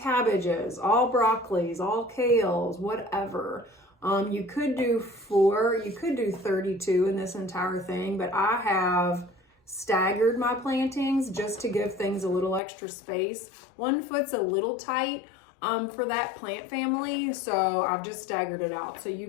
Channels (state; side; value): drops out; right; at 12.6 s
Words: all broccolis, all kales, whatever. You could do 4, you could do 32 in this entire thing, but I have staggered my plantings just to give things a little extra space. 1 foot's a little tight for that plant family, so I've just staggered it out. So you